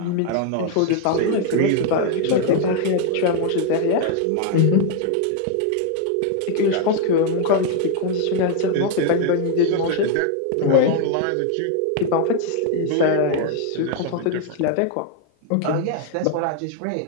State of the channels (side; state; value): both; different; correlation 0.00